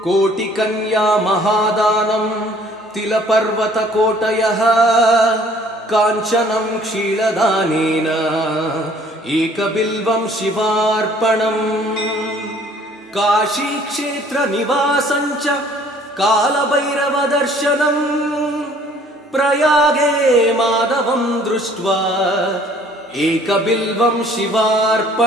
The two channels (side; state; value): both; normal; correlation 0.56